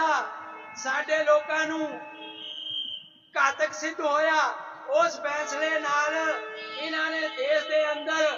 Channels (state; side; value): identical; both; correlation 1.00